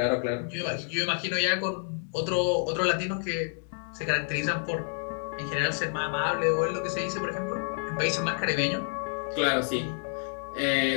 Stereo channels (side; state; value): right; silent; digital silence